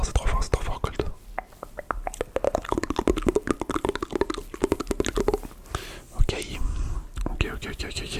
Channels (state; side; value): identical; both; correlation 1.00